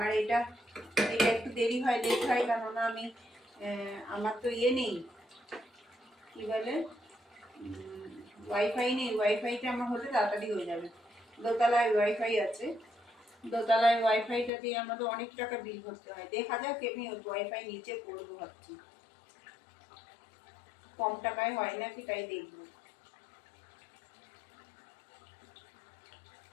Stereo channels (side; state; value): right; drops out; at 14.5 s